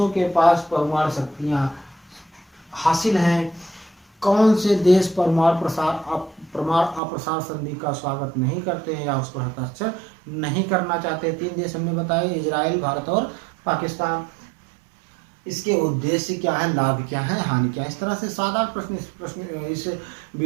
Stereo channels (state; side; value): drops out; left; at 7.0 s